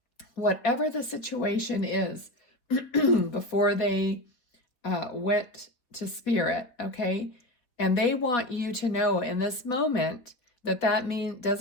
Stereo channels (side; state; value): right; late; 4.1 ms